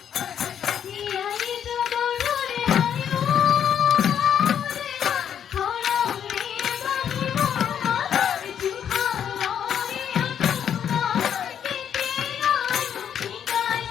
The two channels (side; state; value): right; quieter; 8.8 dB